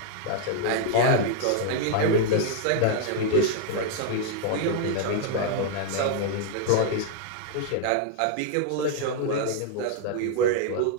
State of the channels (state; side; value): different; both; correlation 0.00